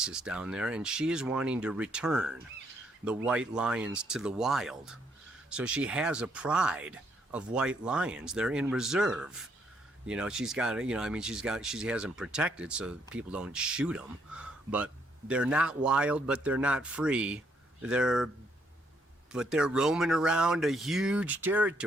down there, and she is wanting to return the white lions to the wild. So she has a pride of white lions. They're in reserve. You know, she's got, you know, I mean, she has them protected so people don't shoot them, but they're not wild, but they're not free. But they're roaming around a huge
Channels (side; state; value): both; normal; correlation 0.72